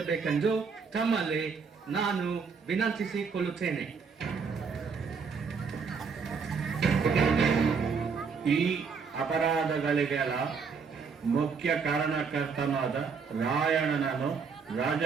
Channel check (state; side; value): quieter; left; 5.6 dB